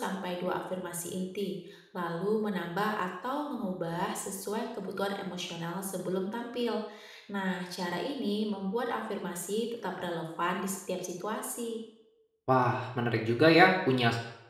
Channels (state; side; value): identical; both; correlation 1.00